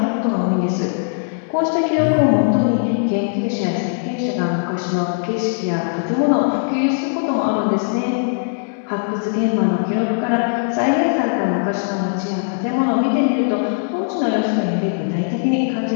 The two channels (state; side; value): silent; right; 66 dB below the other